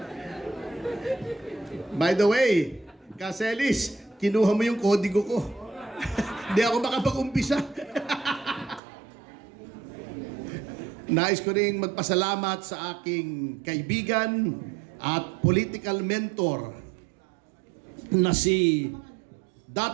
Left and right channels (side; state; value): left; drops out; at 8.8 s